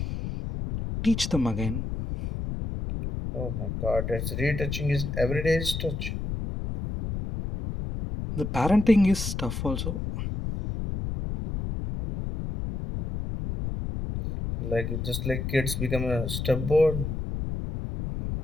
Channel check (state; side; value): noise; left; rumble, 4 dB below the sound